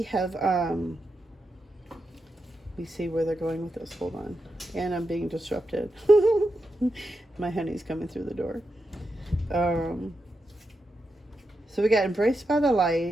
have, let me see where they're going with this. Hold on. And I'm being disrupted. My honey's coming through the door. So we got embraced by the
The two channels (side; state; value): both; normal; correlation 0.87